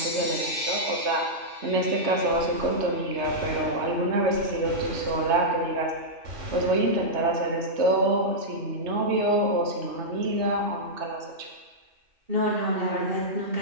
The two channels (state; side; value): late; left; 3.3 ms